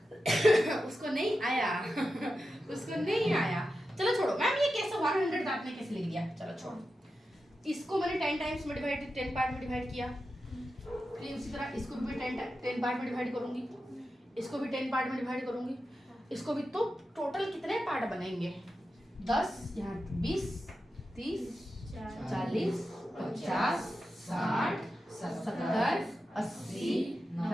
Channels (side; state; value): both; normal; correlation 0.90